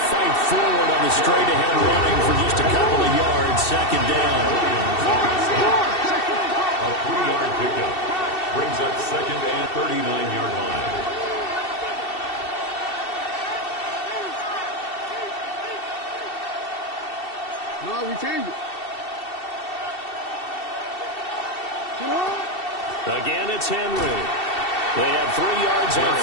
fight forward on the straight-ahead running for just a couple of yards, 2nd down. A 3-yard pickup brings up 2nd and 39-yard line. No, we changed it. Again, it's Henry. They have 3 yards on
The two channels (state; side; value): late; right; 2.7 ms